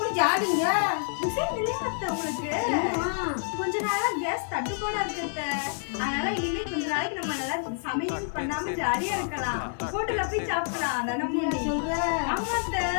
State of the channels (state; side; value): silent; right; 59 dB below the other